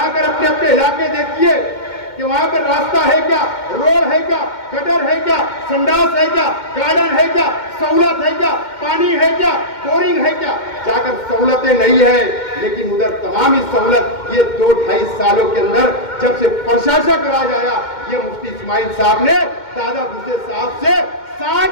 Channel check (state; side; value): late; right; 2.1 ms